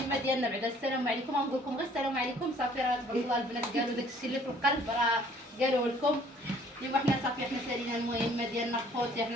ديالنا بعد السلام عليكم. غنقول لكم غير السلام عليكم صافي. راه تبارك الله البنات قالوا داك الشيء اللي في القلب راه قالوه لكم. ايوا حنا صافي حنا سالينا المهمه ديالنا خوتي.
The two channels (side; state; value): both; normal; correlation 0.58